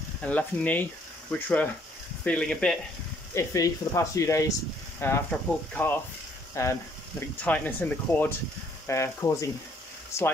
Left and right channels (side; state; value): both; normal; correlation 0.65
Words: and left knee, which were feeling a bit iffy for the past few days after I pulled the calf, and a bit tightness in the quad, causing